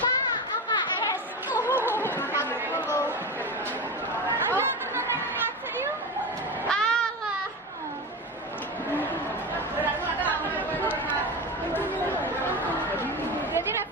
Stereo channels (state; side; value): normal; both; correlation 0.23